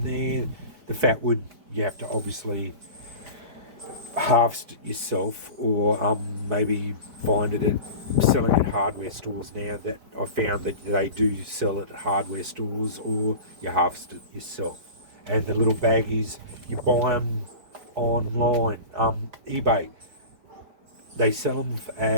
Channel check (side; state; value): left; late; 5.0 ms